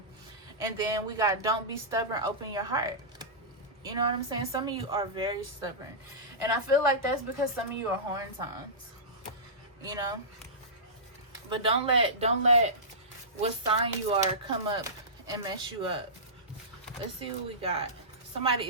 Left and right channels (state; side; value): normal; both; correlation -0.18